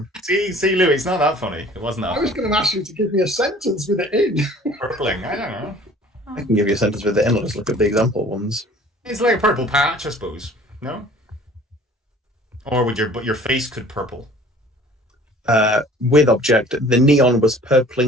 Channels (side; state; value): both; normal; correlation 0.50